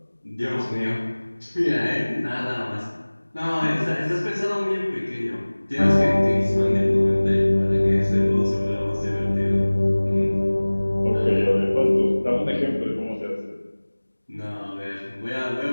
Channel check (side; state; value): both; inverted; correlation -1.00